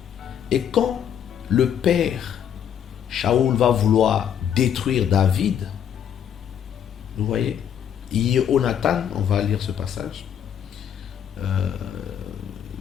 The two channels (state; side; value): quieter; right; 9.0 dB